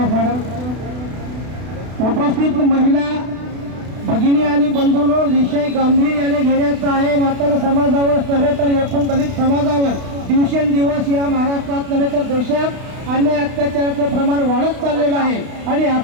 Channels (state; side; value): late; left; 32 ms